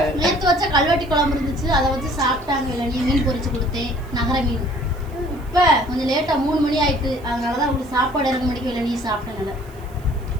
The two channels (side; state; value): right; noise; hiss, 27 dB below the sound